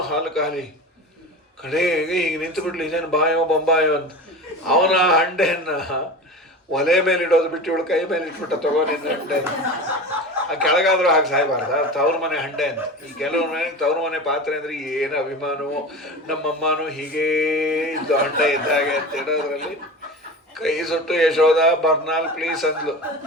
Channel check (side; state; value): both; normal; correlation 0.31